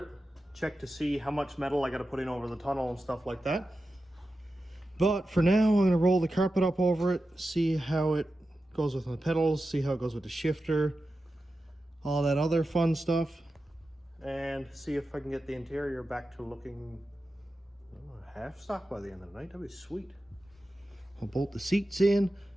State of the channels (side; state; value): both; normal; correlation 0.92